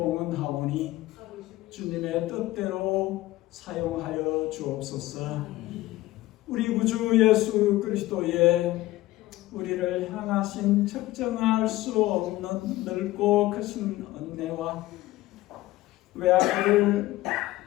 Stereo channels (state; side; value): quieter; right; 17.2 dB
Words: 주님의 뜻대로 사용하여 주옵소서. 우리 구주 예수 그리스도의 우리를 향하신 측정할 수 없는 넓고 크신 은혜와 외아들을